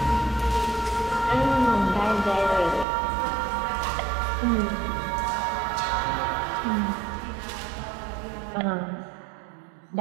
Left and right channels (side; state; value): left; drops out; at 2.9 s